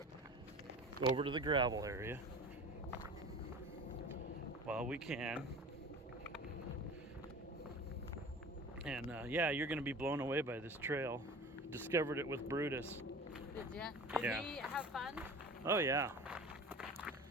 over to the gravel area while we can. And yeah, you're gonna be blown away by this trail. Discovered it with Brutus. Did you? Did Yeah. he have fun? Oh yeah.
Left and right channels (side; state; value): both; normal; correlation 0.38